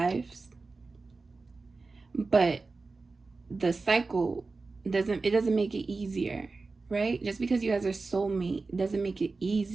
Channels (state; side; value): quieter; left; 3.9 dB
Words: But the cycle doesn't make it easier, right? Just because you guys are soulmate doesn't make it